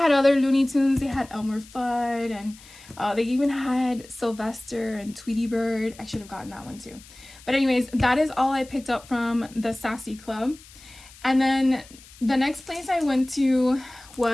other Looney Tunes. They had Elmer Fudd, and they even had Sylvester and Tweety Bird. I should have gotten that one too. But anyways, that is all I picked up from the Sassy Club. And then the next place I went to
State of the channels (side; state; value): left; noise; hiss, 22 dB below the sound